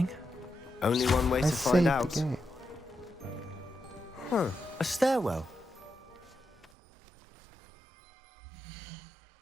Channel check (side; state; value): left; drops out; at 6.7 s